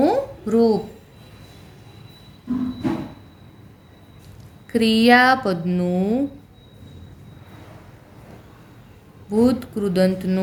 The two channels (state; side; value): identical; both; correlation 1.00